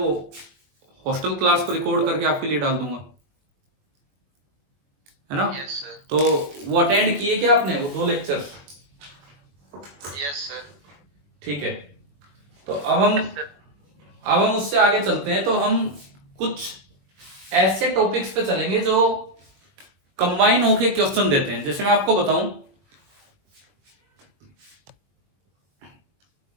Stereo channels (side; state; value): left; late; 21 ms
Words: हॉस्टल क्लास को रिकॉर्ड करके आपके लिए डाल दूंगा, है ना? Yes sir. तो वो अटेंड किए क्या आपने, वो दो लेक्चर? Yes sir. ठीक है, तो अब हम उससे आगे चलते हैं। तो हम कुछ ऐसे टॉपिक्स पे चलेंगे जो कंबाइन होके क्वेश्चन देते हैं। जैसे मैं आपको बताऊं,